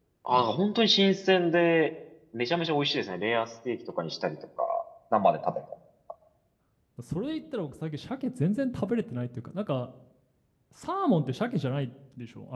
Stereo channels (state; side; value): identical; both; correlation 1.00